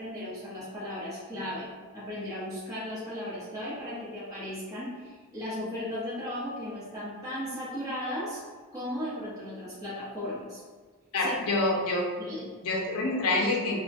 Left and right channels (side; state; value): both; normal; correlation 0.09